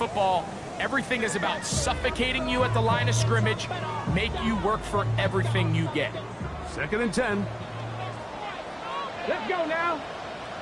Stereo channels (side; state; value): both; identical; correlation 1.00